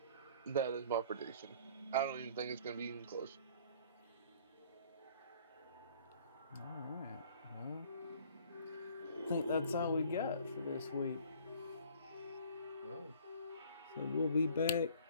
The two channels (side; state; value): both; inverted; correlation -0.53